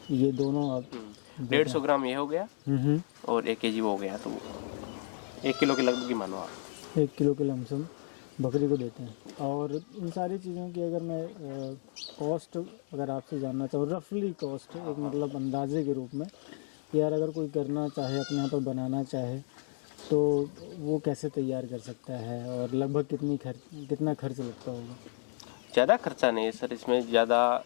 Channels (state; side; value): silent; right; digital silence